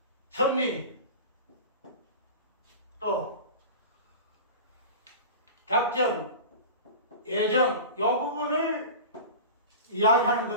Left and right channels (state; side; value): inverted; both; correlation -0.32